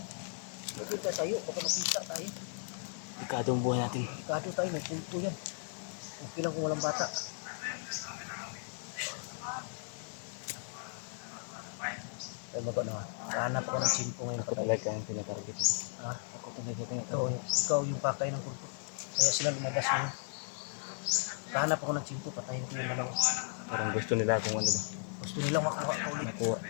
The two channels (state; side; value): silent; right; digital silence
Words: Magkita tayo, baka makita tayo. Delikado ang buhay natin. Ikado tayo, may kulto yan. Okay lang kung walang bata. Ay, mago na nga. Hanap ako ng simpo ngayon. Ako talaga ang tinatarget ko. Ha? Ako talaga Ikaw yung pakay ng kulto. Kaya sila lumabas ngayon. Hanap ako ng simpo, patayin ko yung dalawa. Parang gusto nila kung ano ba. Gusto nilang makuha ka ulit. Nakuha.